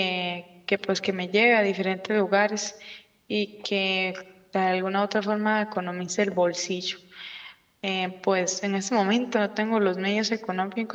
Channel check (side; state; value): both; identical; correlation 1.00